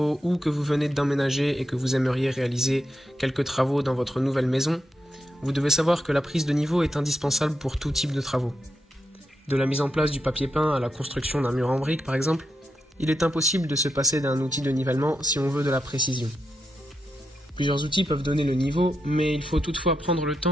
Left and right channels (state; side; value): normal; both; correlation 0.85